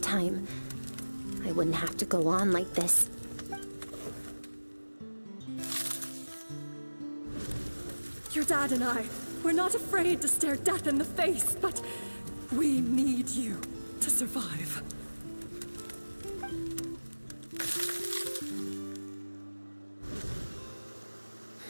I wouldn't have to go on like this. Your dad and I, we're not afraid to stare death in the face, but we need you to survive.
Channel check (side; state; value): both; inverted; correlation -1.00